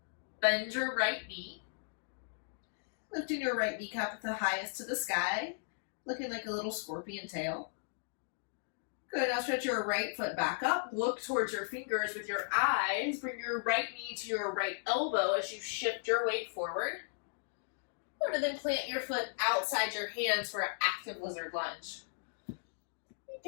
Bend your right knee. Lifting your right kneecap at the highest to the sky. Looking like a little scorpion tail. Good, now stretch your right foot back up. Look towards your fingers with your eyes. Bring your right knee to your right elbow as you shift your weight forward. And then plant your foot outside your hands for an active lizard lunge.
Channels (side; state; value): right; silent; digital silence